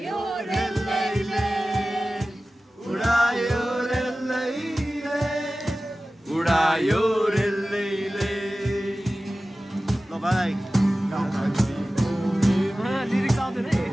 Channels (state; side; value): normal; both; correlation 0.96